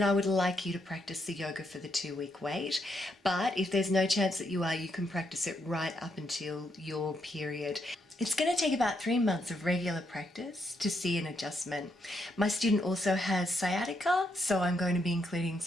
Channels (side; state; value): both; normal; correlation 0.78